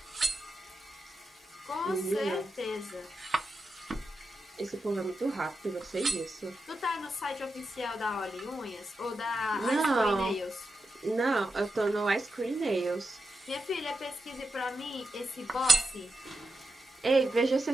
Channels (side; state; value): both; normal; correlation 0.88